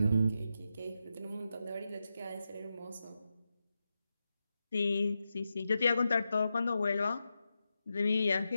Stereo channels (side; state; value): both; inverted; correlation -0.89